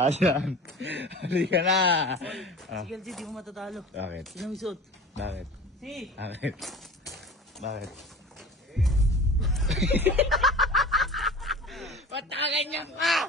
Halika na. Sige, LG, di mo matatalo. Bakit? Sino may suot? Bakit? Si! Bakit? Ba't nakaganyan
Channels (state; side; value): normal; both; correlation 0.38